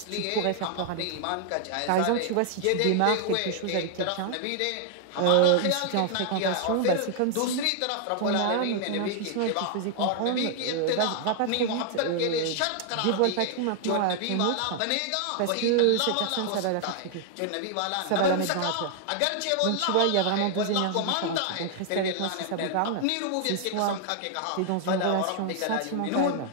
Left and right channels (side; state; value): both; different; correlation 0.00